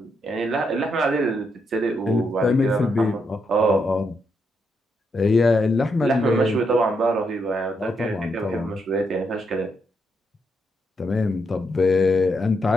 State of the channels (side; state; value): both; normal; correlation 0.79